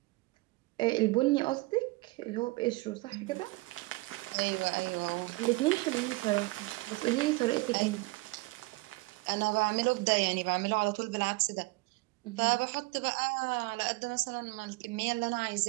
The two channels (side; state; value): left; quieter; 23.4 dB